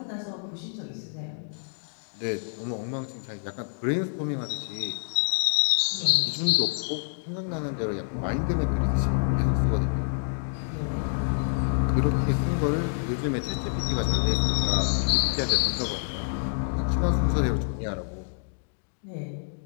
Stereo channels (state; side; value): silent; right; digital silence